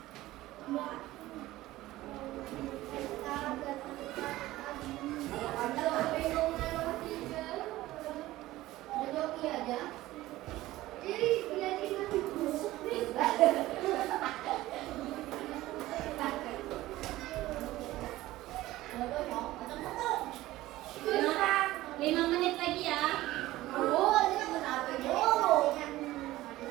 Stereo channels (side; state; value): left; quieter; 16.7 dB